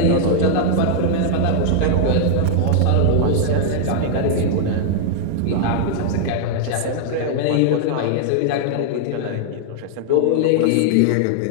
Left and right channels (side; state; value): both; different; correlation -0.01